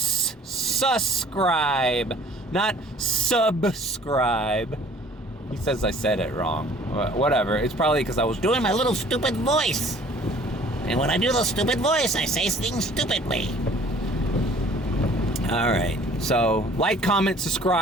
Not subscribe. He says I said it wrong. Whatever. It's probably because I was doing my little stupid voice. And when I do the stupid voice, I say things stupidly. all right. So like, comment,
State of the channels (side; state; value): both; normal; correlation 0.53